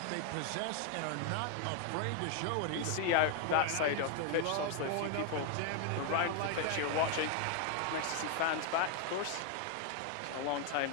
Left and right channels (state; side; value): different; both; correlation 0.01